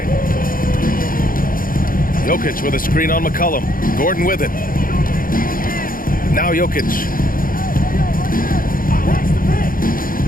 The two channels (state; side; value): late; right; 0.41 ms